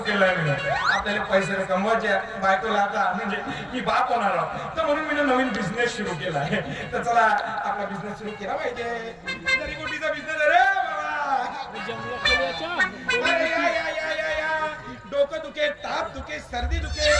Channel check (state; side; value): identical; both; correlation 1.00